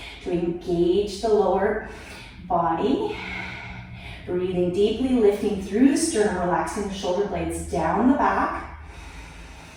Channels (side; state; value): both; identical; correlation 1.00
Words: to engage the lower body. Breathing deeply, lifting through the sternum, relaxing the shoulder blades down the back.